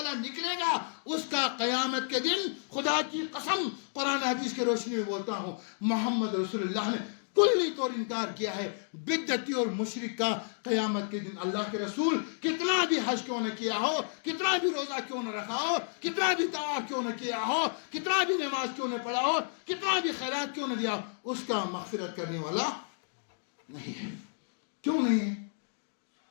نکلے گا، اس کا قیامت کے دن خدا کی قسم قرآن حدیث کے روشنی میں بولتا ہوں، محمد رسول اللہ نے کلی طور انکار کیا ہے بدعتی اور مشرک کا۔ قیامت کے دن اللہ کے رسول کتنا بھی حج کیوں نہ کیا ہو، کتنا بھی روزہ کیوں نہ رکھا ہو، کتنا بھی طواف کیوں نہ کیا ہو، کتنا بھی نماز کیوں نہ پڑھا ہو، کتنا بھی خیرات کیوں نہ دیا ہو، اس کا مغفرت کرنے والا نہیں ہے۔ کیوں نہیں ہے؟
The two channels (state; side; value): silent; right; digital silence